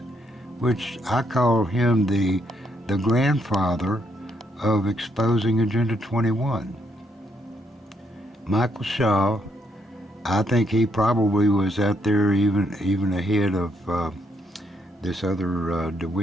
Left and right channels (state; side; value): normal; both; correlation 0.74